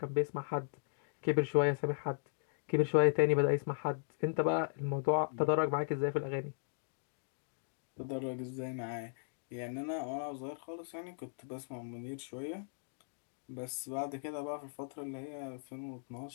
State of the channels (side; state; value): right; silent; digital silence